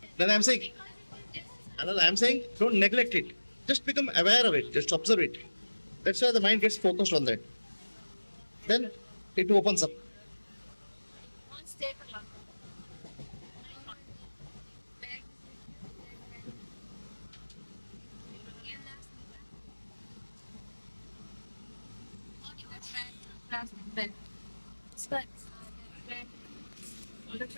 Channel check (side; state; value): both; inverted; correlation -1.00